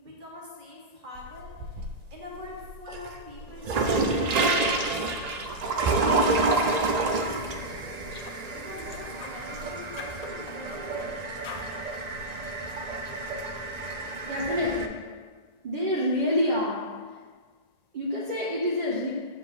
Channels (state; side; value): late; left; 1.9 ms